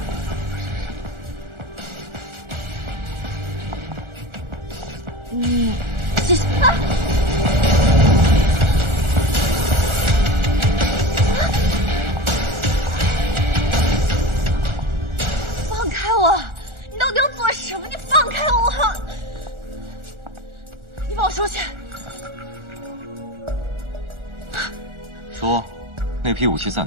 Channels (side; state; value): left; late; 1.4 ms